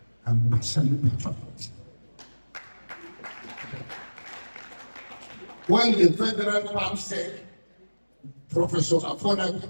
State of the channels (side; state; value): both; inverted; correlation -1.00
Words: I'm absolutely proud of it. When the federal PAM said Professor Afona